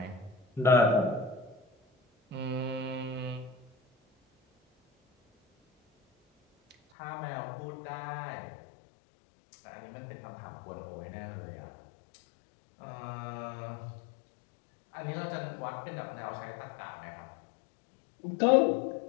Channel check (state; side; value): drops out; right; at 6.8 s